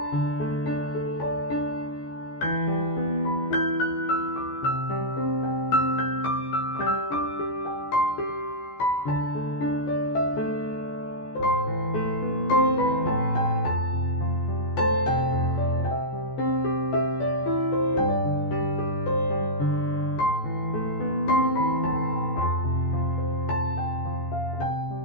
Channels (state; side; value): late; right; 14 ms